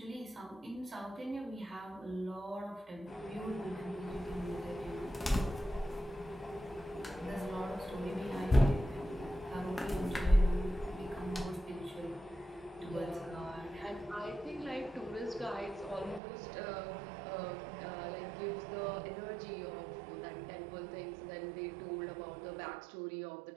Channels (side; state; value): left; drops out; at 16.2 s